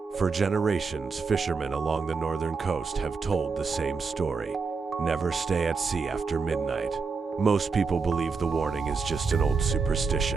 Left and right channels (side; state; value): left; quieter; 4.8 dB